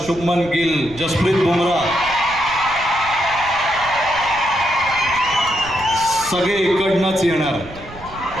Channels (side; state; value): right; noise; rumble, 16 dB below the sound